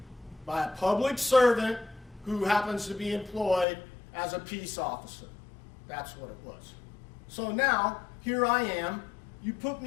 by a public servant who happens to be employed as a peace officer. That's what it was. So now, here I am. You put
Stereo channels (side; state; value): right; drops out; at 3.7 s